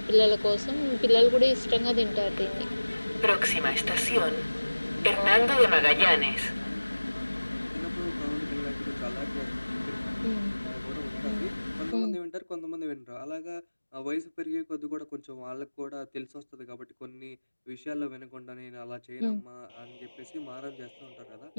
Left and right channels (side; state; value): both; inverted; correlation -1.00